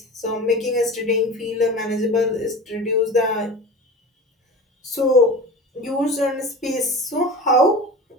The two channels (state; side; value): normal; both; correlation 0.33